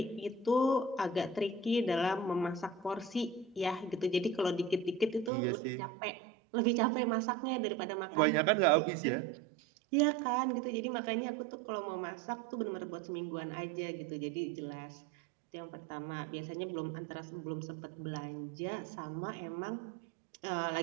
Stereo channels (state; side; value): drops out; left; at 5.3 s